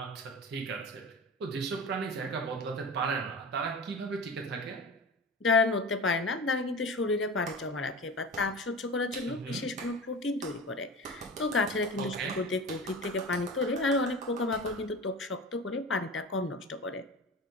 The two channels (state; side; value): normal; both; correlation 0.32